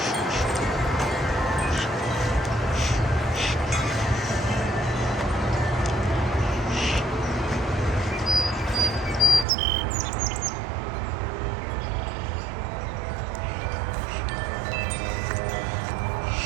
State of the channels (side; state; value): left; drops out; at 9.5 s